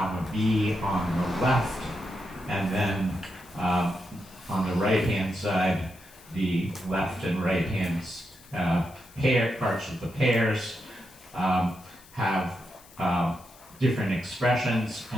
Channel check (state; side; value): noise; left; hiss, 24 dB below the sound